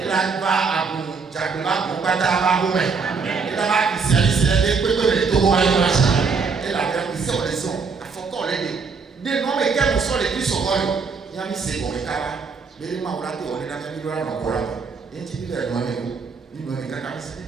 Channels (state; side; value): quieter; left; 5.0 dB